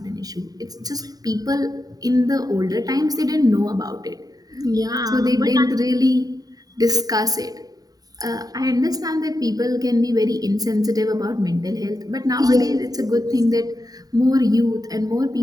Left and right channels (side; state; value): left; late; 0.18 ms